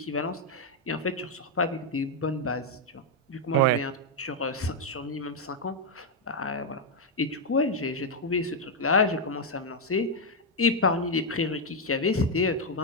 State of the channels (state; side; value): normal; both; correlation 0.00